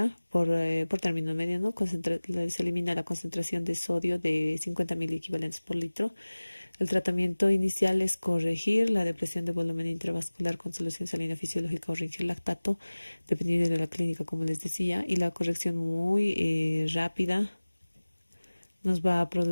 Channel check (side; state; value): both; inverted; correlation -1.00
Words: por término medio, ¿no? Se elimina la concentración de sodio de 50.000 equivalentes por litro. El tratamiento inicial es corregir la depresión de volumen intravascular con solución salina fisiológica o rinchil lactato, dependiendo de la clínica, como les decía, y la corrección muy rápida nos va a